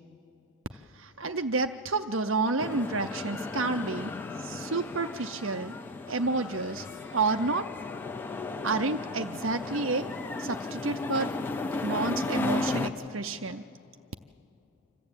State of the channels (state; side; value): normal; both; correlation 0.15